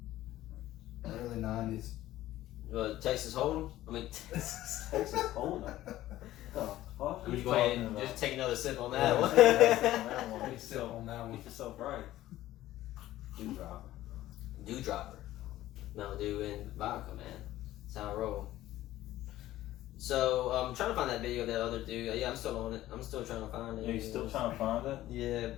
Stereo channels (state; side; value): quieter; right; 14.8 dB